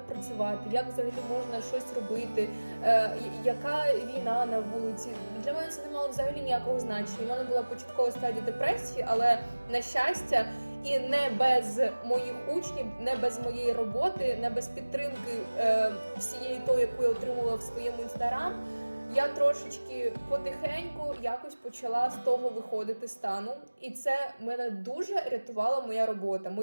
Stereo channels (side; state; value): both; inverted; correlation -1.00